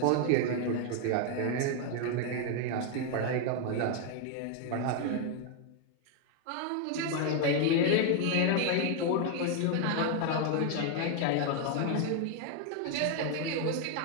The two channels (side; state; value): both; different; correlation 0.00